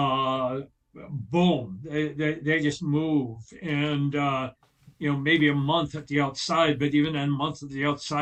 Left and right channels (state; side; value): identical; both; correlation 1.00